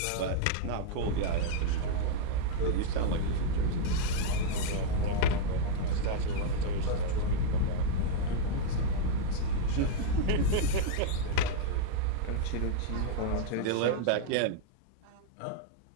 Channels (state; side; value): different; both; correlation -0.01